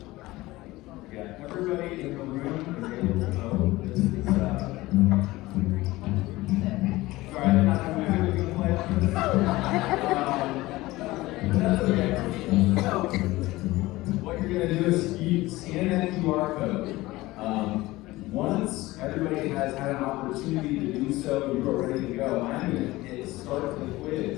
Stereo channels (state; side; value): quieter; right; 19.0 dB